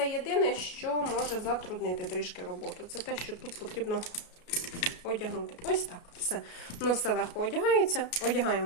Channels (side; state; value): right; late; 33 ms